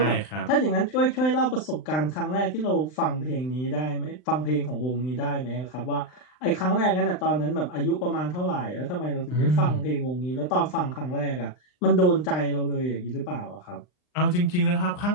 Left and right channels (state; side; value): late; right; 39 ms